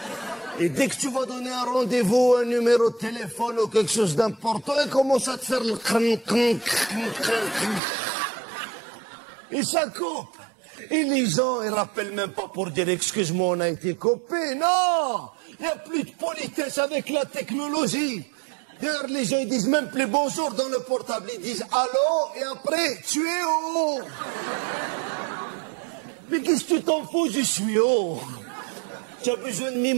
Et dès que tu vas donner un rendez-vous, un numéro de téléphone ou quelque chose d'important, il commence à te faire le et ça coupe. Et les gens, ils rappellent même pas pour dire excuse-moi, on a été coupé. Non! Il n'y a plus de politesse avec la technologie. D'ailleurs, les gens, ils disent même plus bonjour dans le portable. Ils disent allô et après, tu es où? Mais qu'est-ce que tu t'en fous, je suis où? Tu as besoin de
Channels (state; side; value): drops out; left; at 7.8 s